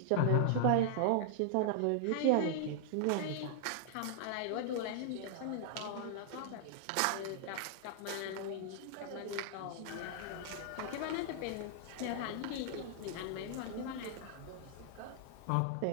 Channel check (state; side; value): different; both; correlation -0.01